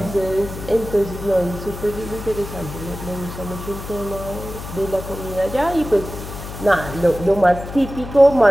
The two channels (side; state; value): left; noise; hum, 10 dB below the sound